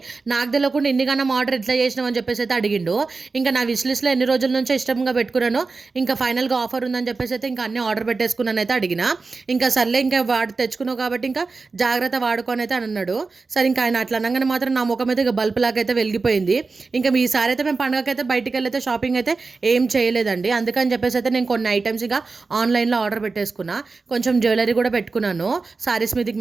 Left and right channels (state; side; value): quieter; left; 4.1 dB